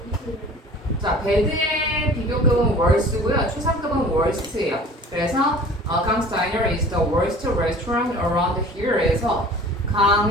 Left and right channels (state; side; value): normal; both; correlation 0.45